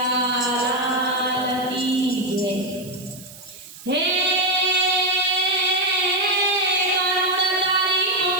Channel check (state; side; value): noise; right; hiss, 18 dB below the sound